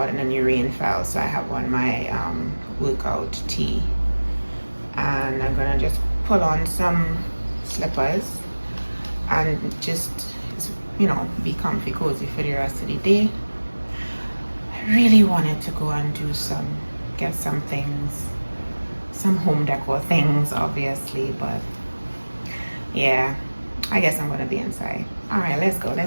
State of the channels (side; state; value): both; inverted; correlation -1.00